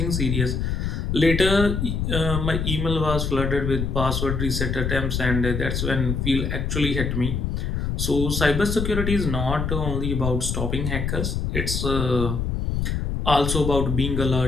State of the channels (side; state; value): left; noise; rumble, 1 dB below the sound